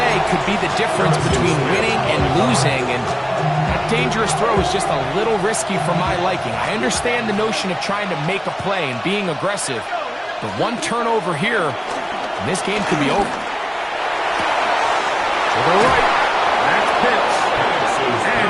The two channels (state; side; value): identical; both; correlation 1.00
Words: could be the difference between winning and losing, and that dangerous throw is just a little risky for my liking. I understand the notion of trying to make a play and being aggressive, but one turnover here, and this game could be over. To the right, that's Pitts. And